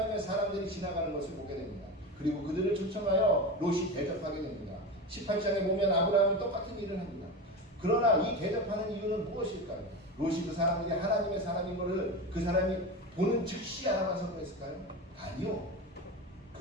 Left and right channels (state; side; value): normal; both; correlation 0.24